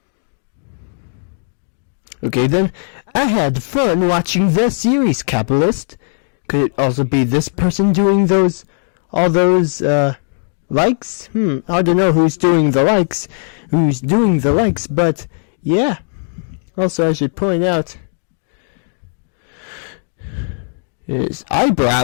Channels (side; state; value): right; silent; 65 dB below the other